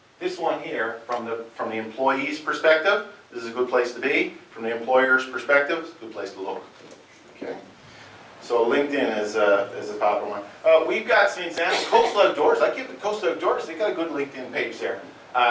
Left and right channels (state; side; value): identical; both; correlation 1.00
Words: this one here, from the employee's perspective, this is a good place to be. From the employer's perspective, it's a good place to look. Okay. So LinkedIn is a popular one. We've got some examples. Coastal Outdoors. I give the Coastal Outdoors. They've got a good LinkedIn page there